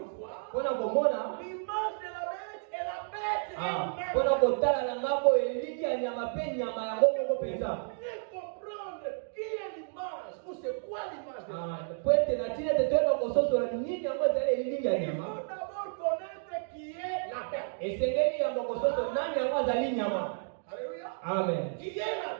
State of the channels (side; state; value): left; silent; digital silence